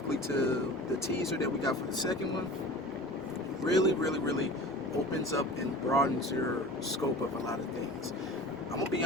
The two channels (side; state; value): both; normal; correlation 0.38